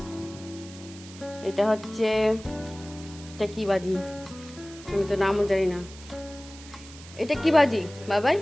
এটা হচ্ছে এটা কি বাজি আমি তো নামও জানি না। এটা কি বাজি বাবাই?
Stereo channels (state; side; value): noise; right; hiss, 18 dB below the sound